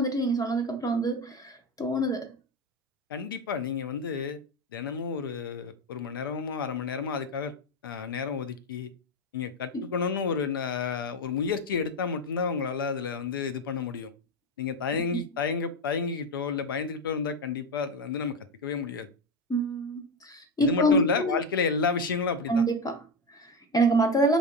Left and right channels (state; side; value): normal; both; correlation 0.14